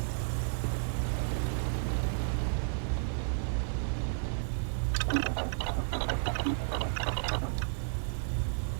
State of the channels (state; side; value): silent; left; digital silence